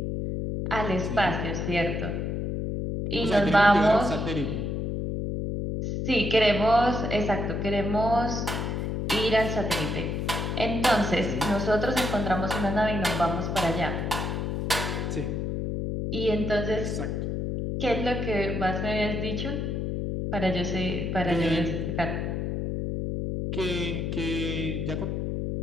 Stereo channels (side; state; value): left; noise; hum, 2 dB below the sound